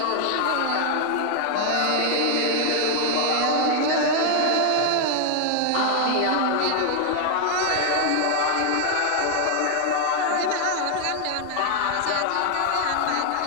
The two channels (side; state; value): both; different; correlation 0.00